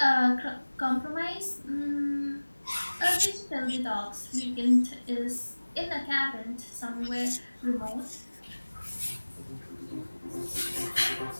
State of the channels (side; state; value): both; inverted; correlation -1.00